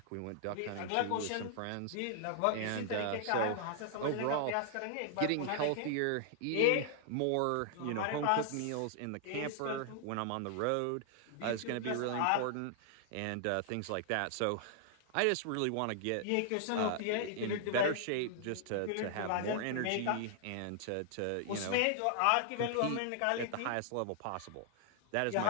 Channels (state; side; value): different; both; correlation 0.00